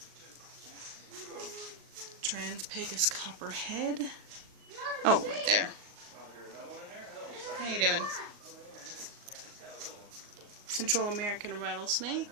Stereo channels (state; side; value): late; left; 38 ms